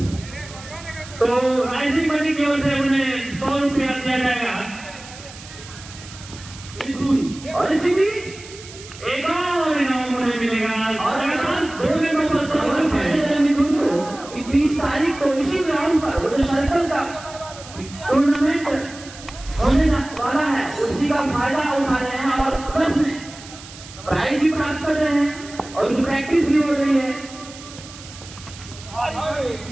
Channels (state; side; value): noise; right; hiss, 17 dB below the sound